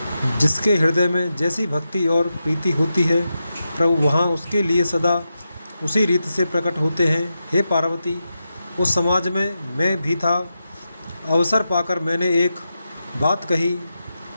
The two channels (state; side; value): inverted; both; correlation -0.89